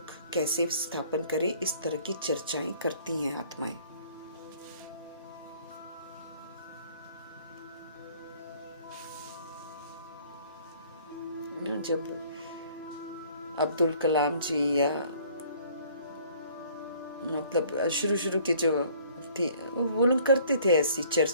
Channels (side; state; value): both; inverted; correlation -0.56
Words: कैसे स्थापन करें, इस तरह की चर्चाएं करती हैं आत्माएं। जब अब्दुल कलाम जी या मतलब शुरू के जो थे वो लोग करते थे ऐसी